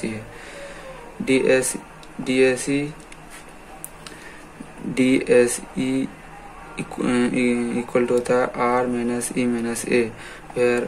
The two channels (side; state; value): both; identical; correlation 1.00